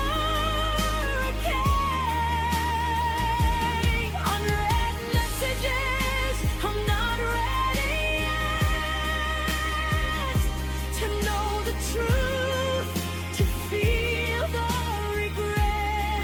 Unread messages, I'm not ready yet to know the truth, to feel the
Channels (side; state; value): both; identical; correlation 1.00